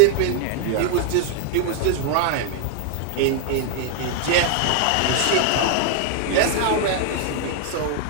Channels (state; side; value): different; both; correlation 0.00